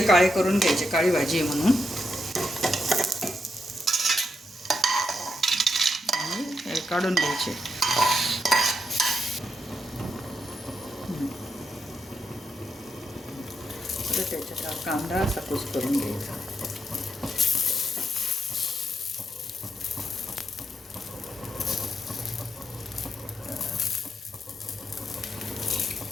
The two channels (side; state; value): both; normal; correlation 0.83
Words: काळे करून घ्यायचे, काळी भाजी आहे म्हणून. काढून घ्यायचे. तर त्याच्यात कांदा असा कुस करून घ्यायचा.